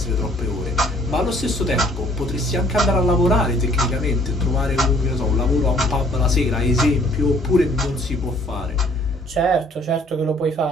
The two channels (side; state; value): both; normal; correlation 0.59